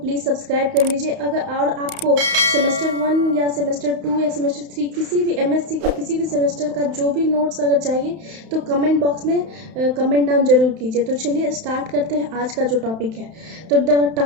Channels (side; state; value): left; late; 31 ms